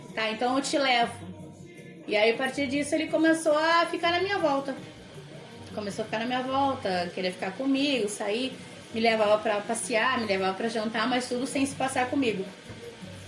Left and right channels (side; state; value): both; identical; correlation 1.00